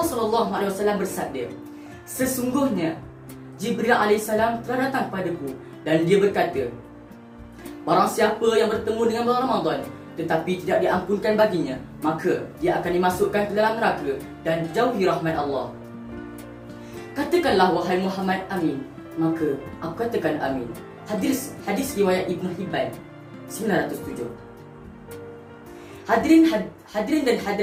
SAW bersabda, sesungguhnya Jibril AS telah datang padaku dan dia berkata, barang siapa yang bertemu dengan bulan Ramadan tetapi tidak diampunkan baginya, maka dia akan dimasukkan ke dalam neraka dan jauhi rahmat Allah. Katakanlah wahai Muhammad amin, maka aku katakan amin. Hadis riwayat Ibn Hibban 907. Hadirin dan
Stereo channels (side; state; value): both; identical; correlation 1.00